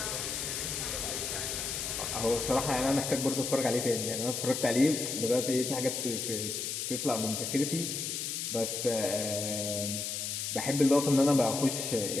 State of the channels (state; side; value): noise; left; hiss, 3 dB below the sound